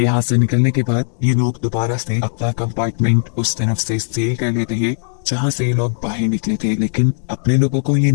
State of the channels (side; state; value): right; silent; digital silence